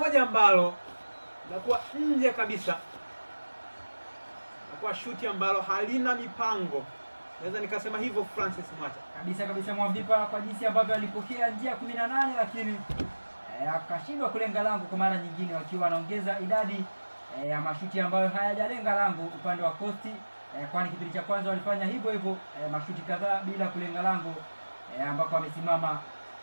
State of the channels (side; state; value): both; inverted; correlation -1.00